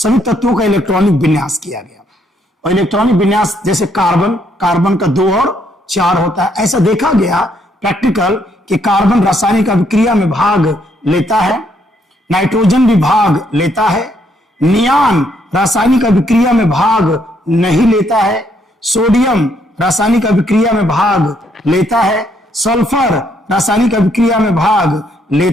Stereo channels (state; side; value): normal; both; correlation 0.72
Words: तत्वों का इलेक्ट्रॉनिक विन्यास किया गया। और इलेक्ट्रॉनिक विन्यास जैसे कार्बन का 2 और 4 होता है, ऐसा देखा गया प्रैक्टिकल कि कार्बन रासायनिक अभिक्रिया में भाग लेता है, नाइट्रोजन भी भाग लेता है, नियान रासायनिक अभिक्रिया में भाग नहीं लेता है, सोडियम रासायनिक अभिक्रिया में भाग लेता है, सल्फर रासायनिक अभिक्रिया में भाग